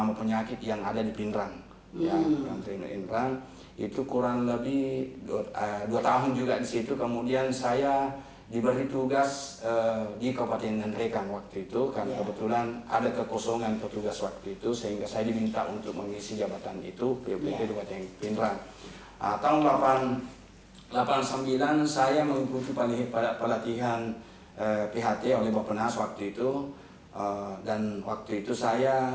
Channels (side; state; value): both; identical; correlation 1.00